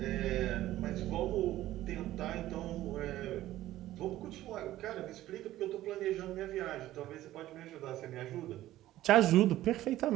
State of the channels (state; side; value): quieter; left; 14.6 dB